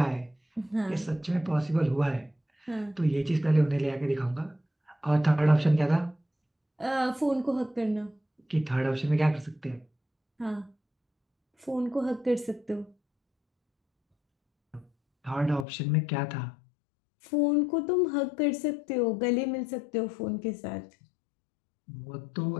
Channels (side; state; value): right; drops out; at 15.7 s